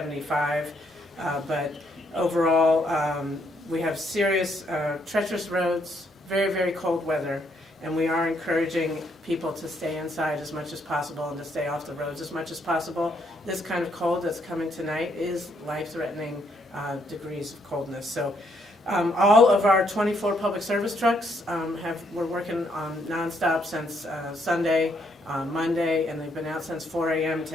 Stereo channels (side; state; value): both; normal; correlation 0.73